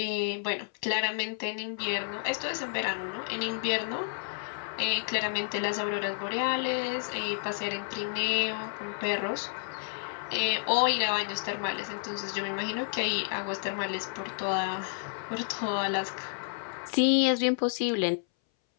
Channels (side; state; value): right; silent; 57 dB below the other